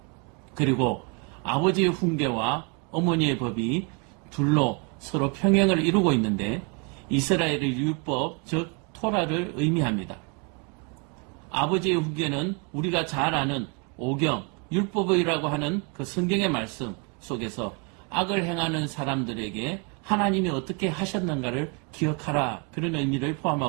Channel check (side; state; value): left; quieter; 34.4 dB